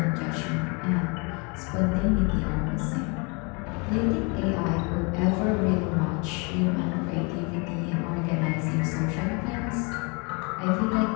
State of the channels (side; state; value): right; quieter; 31.9 dB